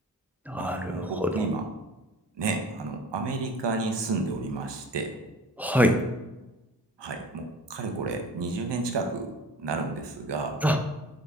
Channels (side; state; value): both; normal; correlation 0.44